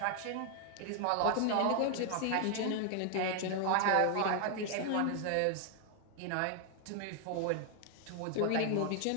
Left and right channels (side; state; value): both; different; correlation 0.00